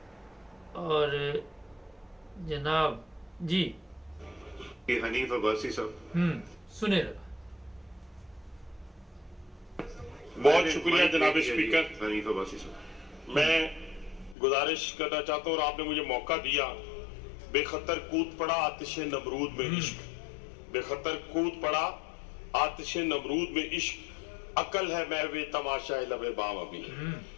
और जनाब जी हनीफ अब्बासी साहब सुने। बहुत शुक्रिया जनाब स्पीकर। हनीफ अब्बासी साहब, मैं गुजारिश करना चाहता हूँ और आपने मुझे मौका दिया। बेखतर कूद पड़ा आतिश नमरूद में इश्क, बेखतर कूद पड़ा आतिश नमरूद में इश्क, अकल है महवे तमाशा लबे बाम अभी।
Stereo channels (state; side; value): drops out; right; at 14.4 s